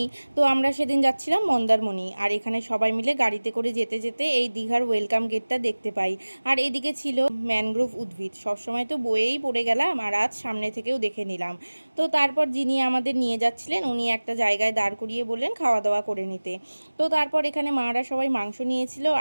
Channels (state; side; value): inverted; both; correlation -1.00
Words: তো আমরা সেদিন যাচ্ছিলাম মন্দারমণি, আর এখানে সবাই মিলে গাড়িতে করে যেতে যেতে এই দীঘার ওয়েলকাম গেটটা দেখতে পাই। আর এদিকে ছিল ম্যানগ্রোভ উদ্ভিদ, সবসময় তো বয়েই পড়ে গেলাম, আর আজ সামনে থেকেও দেখে নিলাম। তো তারপর যিনি আমাদের নিয়ে যাচ্ছিলেন উনি একটা জায়গায় দাঁড় করিয়ে বললেন খাওয়া দাওয়া করে নিতে। তো তারপর এখানে মারা সবাই মাংস নিয়েছিল,